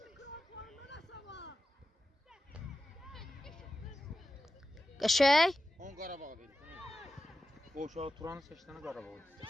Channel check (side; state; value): both; normal; correlation 0.91